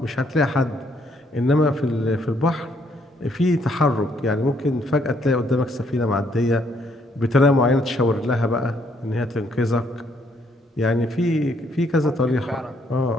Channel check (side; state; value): both; normal; correlation 0.69